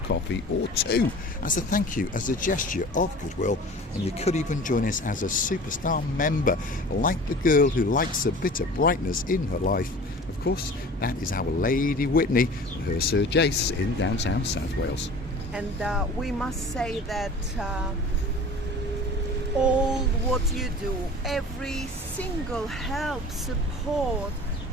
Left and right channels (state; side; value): normal; both; correlation 0.41